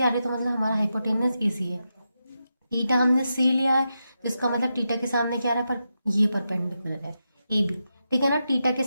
आ रही है, तो मतलब हमारा हाइपोटेनस एसी है। टीटा हमने सी लिया है, जिसका मतलब टीटा के सामने क्या आ रहा है, पर ये परपेंडिकुलर है, ए बी, ठीक है ना। टीटा के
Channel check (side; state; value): both; inverted; correlation -0.87